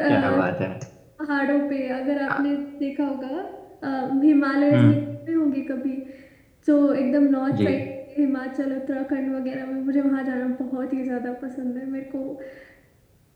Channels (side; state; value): both; identical; correlation 1.00